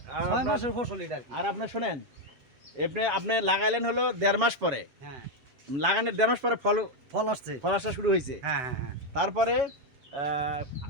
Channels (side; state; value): left; late; 7.1 ms